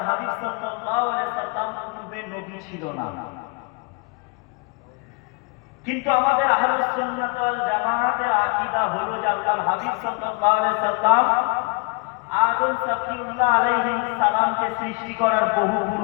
হাবিব সাল্লাল্লাহু আলাইহি ওয়াসাল্লাম পূর্বে নবী ছিল না। কিন্তু আমাদের আহলুস সুন্নাত ওয়াল জামাতের আকীদা হলো যে আল্লাহর হাবিব সাল্লাল্লাহু আলাইহি ওয়াসাল্লাম আদম সফিউল্লাহ আলাইহিস সালামকে সৃষ্টি করার বহু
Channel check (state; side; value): quieter; right; 29.1 dB